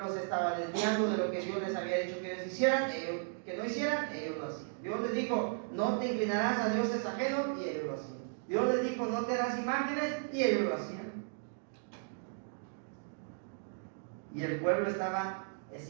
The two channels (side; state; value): left; silent; digital silence